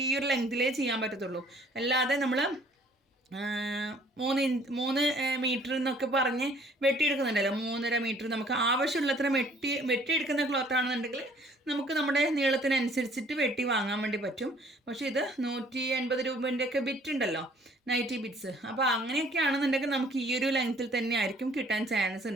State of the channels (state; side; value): normal; both; correlation 0.58